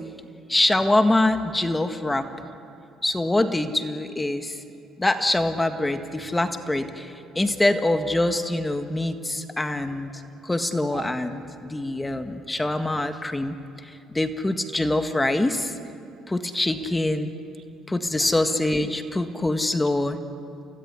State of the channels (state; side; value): normal; both; correlation 0.95